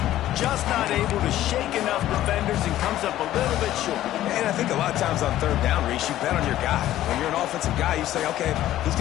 Just not able to shake enough defenders and comes up a little bit short. And I think a lot of times on third down, Reese, you bet on your guy. When you're an offensive guy, you say, okay, he's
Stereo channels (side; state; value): right; quieter; 13.6 dB